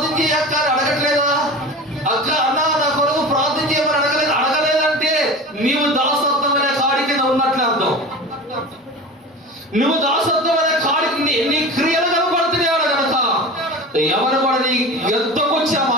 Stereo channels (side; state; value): both; normal; correlation 0.33